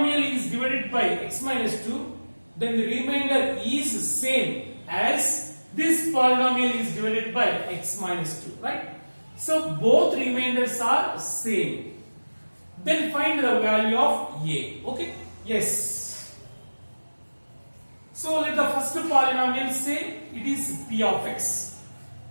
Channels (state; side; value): inverted; both; correlation -1.00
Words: is divided by x minus 2, then the remainder is same as this polynomial is divided by x minus 2, right? So both remainders are same. Then find the value of a. Okay? Yes. So let the first polynomial say it is p of x.